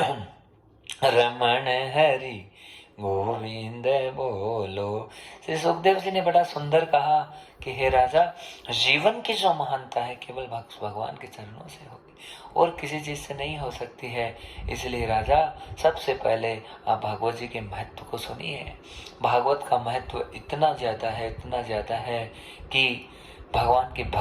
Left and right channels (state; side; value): identical; both; correlation 1.00